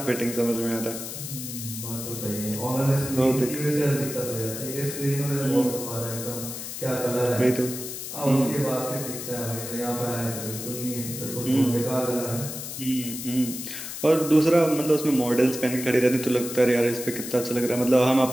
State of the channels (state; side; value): noise; left; hiss, 8 dB below the sound